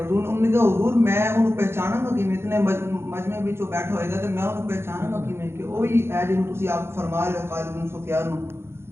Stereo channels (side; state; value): left; late; 0.12 ms